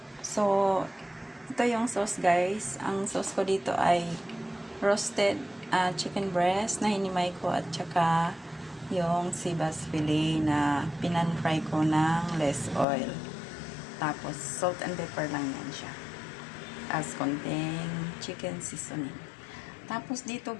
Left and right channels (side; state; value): right; drops out; at 12.9 s